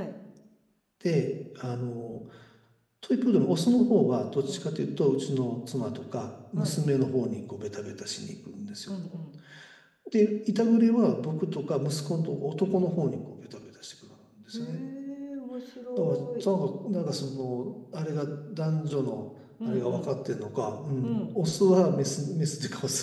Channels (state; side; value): identical; both; correlation 1.00